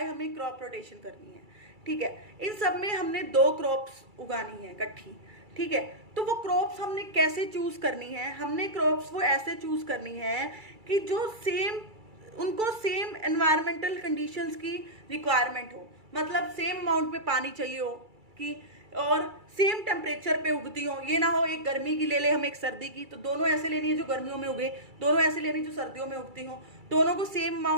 हमें क्रॉप रोटेशन करनी है, ठीक है। इन सब में हमने दो क्रॉप्स उगानी है इकट्ठी, ठीक है। तो वो क्रॉप्स हमने कैसे चूज करनी है? हमने क्रॉप्स वो ऐसे चूज करनी है कि जो उनको सेम एनवायरमेंटल कंडीशंस की रिक्वायरमेंट हो, मतलब सेम अमाउंट में पानी चाहिए हो कि और सेम टेम्परेचर पे उगती हो। ये ना हो एक गर्मी की ले ले हम, एक सर्दी की, तो दोनों ऐसे लेनी है जो गर्मियों में उगे, दोनों ऐसे लेनी जो सर्दियों में उगती हो, दोनों को सेम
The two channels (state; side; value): late; left; 2.3 ms